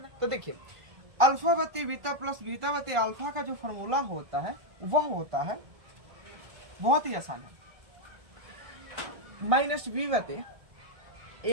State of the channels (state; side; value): late; left; 1.7 ms